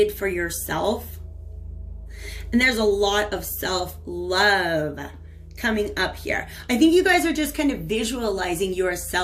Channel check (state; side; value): identical; both; correlation 1.00